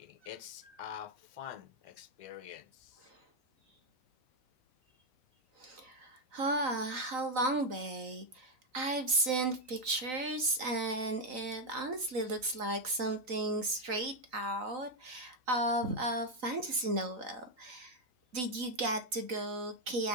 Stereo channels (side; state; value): left; late; 3.9 ms